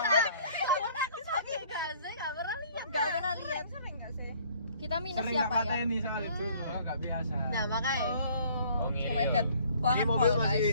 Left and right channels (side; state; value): both; inverted; correlation -0.57